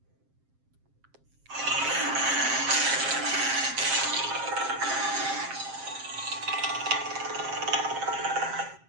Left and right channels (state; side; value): late; left; 7.5 ms